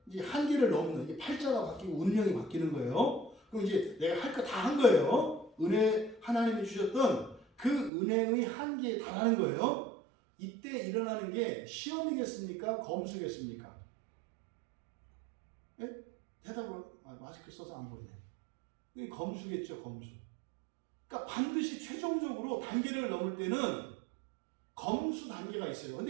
이제 한계를 넘는 이게 팔자가 바뀌고 운명이 바뀌는 거예요. 그럼 이제 내가 할 거 다 한 거예요. 은혜 하나님이 주셨던 그 은혜의 한계에 달하는 거예요. 이때 일어나는 게 시험이겠습니까? 검수겠습니까? 예? 대답을 마스크 써서 안 보이네. 이게 검수겠죠, 검수. 그러니까 반드시 최종적으로 단계를 넘을 때는 검수 단계가 있어요.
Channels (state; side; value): drops out; left; at 7.9 s